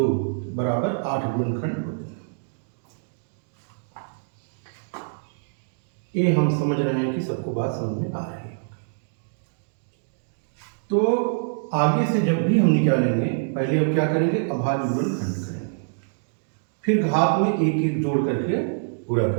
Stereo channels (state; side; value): silent; left; digital silence